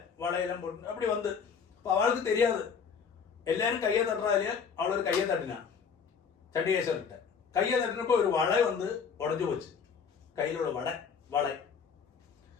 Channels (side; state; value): right; quieter; 6.3 dB